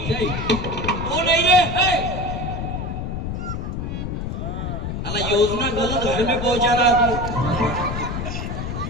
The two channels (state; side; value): noise; left; rumble, 4 dB below the sound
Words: जय. तो नाही रे, योजना गलत घर में पहुंचा रहा